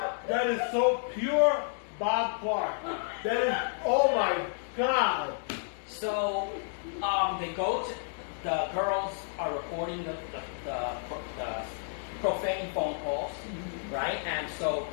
that is so pure Bob Clark. That is, oh my God. So they go to, the girls are reporting the profane phone calls, right? And so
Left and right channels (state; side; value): silent; right; digital silence